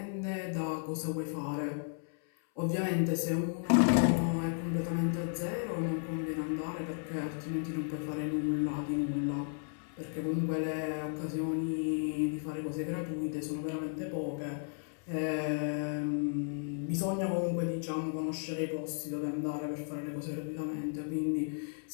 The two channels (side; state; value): right; silent; 55 dB below the other